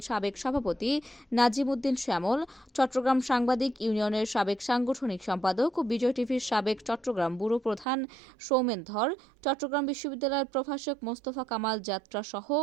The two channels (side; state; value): left; drops out; at 7.9 s